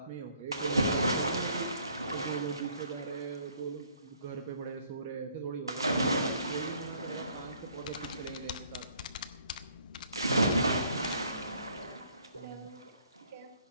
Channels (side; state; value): both; inverted; correlation -0.63